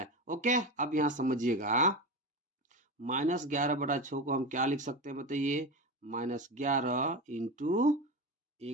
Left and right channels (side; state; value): both; normal; correlation 0.22